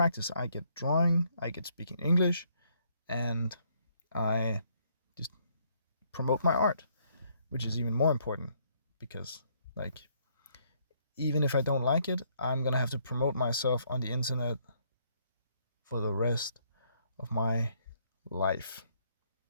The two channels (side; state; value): both; inverted; correlation -0.69